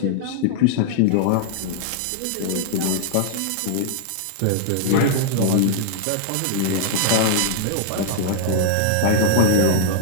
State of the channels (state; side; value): different; both; correlation -0.01